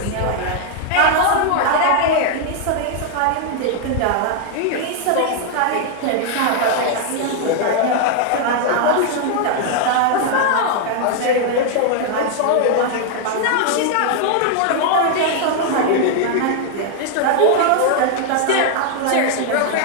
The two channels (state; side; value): different; both; correlation 0.00